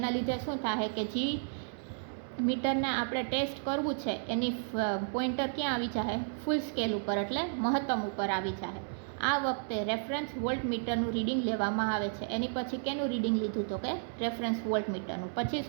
લીધે શું થાય કે જે મીટરને આપણે ટેસ્ટ કરવું છે એની પોઇન્ટર ક્યાં આવી જાય? ફૂલ સ્કેલ ઉપર એટલે મહત્તમ ઉપર આવી જાય. આ વખતે રેફરન્સ વોલ્ટમીટરનું રીડિંગ લેવામાં આવે છે. એની પછી કેનું રીડિંગ લીધું? તો કે રેફરન્સ વોલ્ટમીટરનું. પછી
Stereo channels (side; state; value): left; silent; digital silence